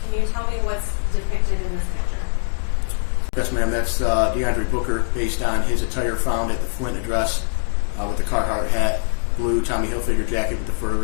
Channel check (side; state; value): right; silent; 64 dB below the other